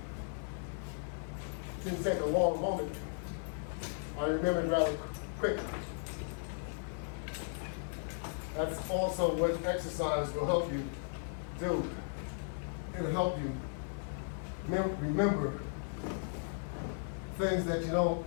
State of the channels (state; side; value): silent; right; 54 dB below the other